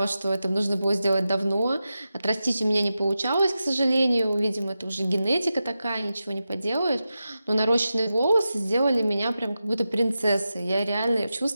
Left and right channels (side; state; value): both; inverted; correlation -0.91